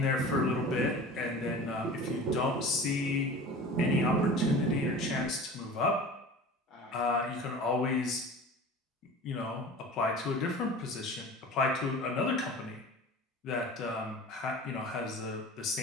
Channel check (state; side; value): normal; both; correlation 0.38